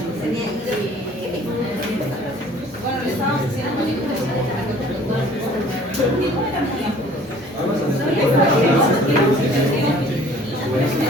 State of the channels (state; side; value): noise; right; hum, 26 dB below the sound